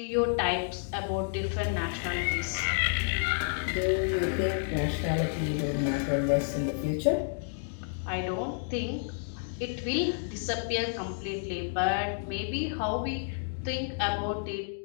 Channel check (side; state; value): right; silent; digital silence